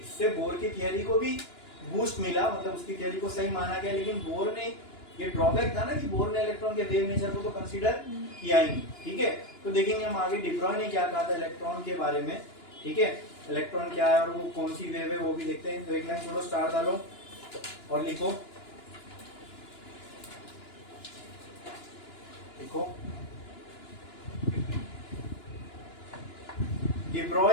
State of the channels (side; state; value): right; late; 2.9 ms